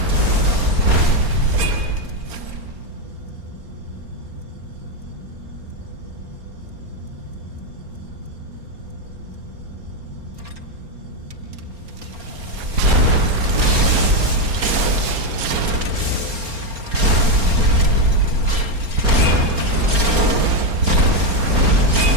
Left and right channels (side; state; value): left; late; 4.3 ms